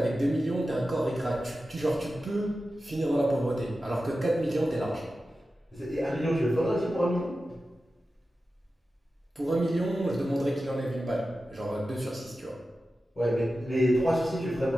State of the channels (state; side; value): normal; both; correlation 0.93